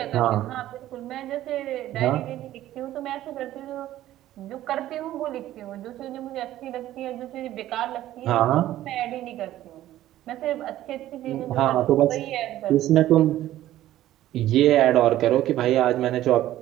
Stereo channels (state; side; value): quieter; left; 13.8 dB